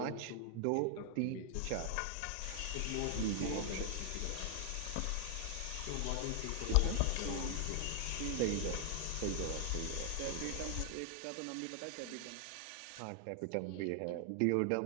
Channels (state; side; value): different; both; correlation 0.00